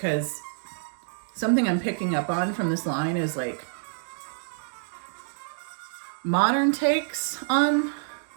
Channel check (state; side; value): silent; left; digital silence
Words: something I'm picking up on from this line is like modern takes on